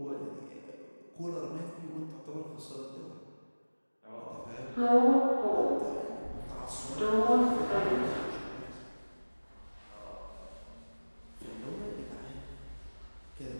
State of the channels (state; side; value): inverted; both; correlation -1.00